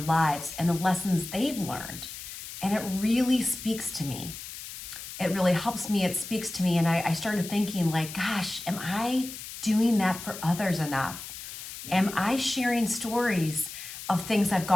lives and the lessons they've learned. And it really speaks to me. It really helps me. It speaks to me. And I started thinking like, gosh, am I doing that for others enough? Am I sharing stories of things I've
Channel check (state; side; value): noise; left; hiss, 11 dB below the sound